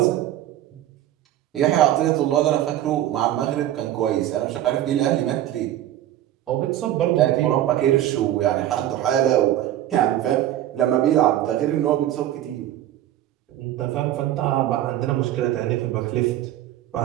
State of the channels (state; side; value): quieter; left; 12.8 dB